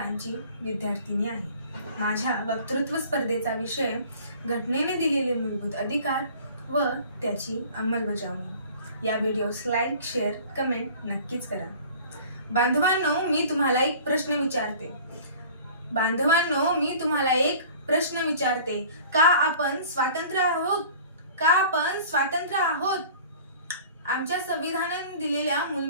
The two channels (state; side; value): inverted; both; correlation -0.46